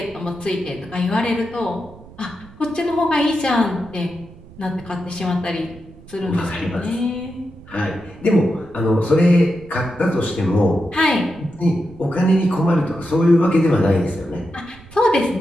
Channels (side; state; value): right; noise; rumble, 21 dB below the sound